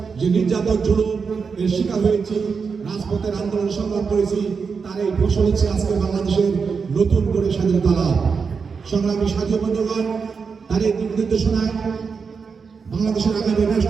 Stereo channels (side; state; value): left; quieter; 5.5 dB